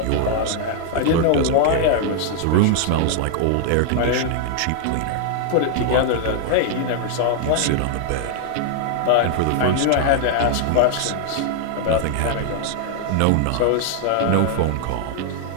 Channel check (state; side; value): different; both; correlation 0.00